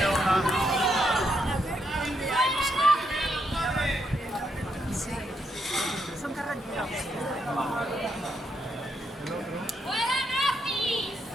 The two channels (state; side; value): normal; both; correlation 0.78